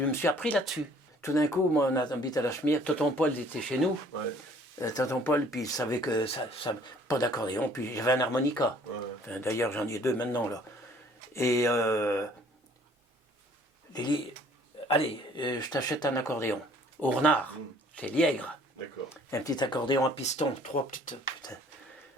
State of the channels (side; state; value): both; normal; correlation 0.56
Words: me suis appris là-dessus. Tout d'un coup, moi, on a habité à la Chemière. Tonton Paul était chez nous. Tonton Paul, puis il savait que pas d'accordéon, puis j'avais un harmonica. Enfin, d'ailleurs, j'en ai 2 maintenant, là. Et Lili, allez, je t'achète un accordéon. Au renard, c'est Liègre. D'accord. Un petit accordéon à piston, 3 petites... Putain.